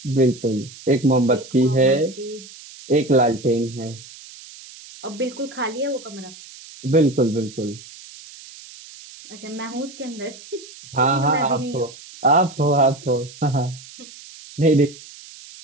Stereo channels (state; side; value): noise; right; hiss, 18 dB below the sound